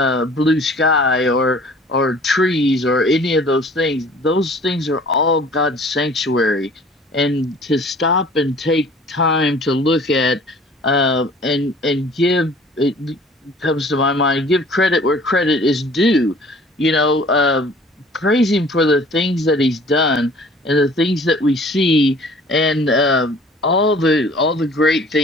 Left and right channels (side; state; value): both; normal; correlation 0.50